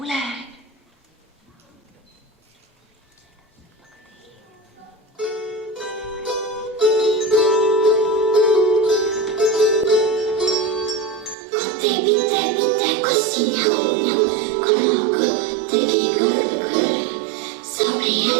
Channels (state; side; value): drops out; left; at 11.4 s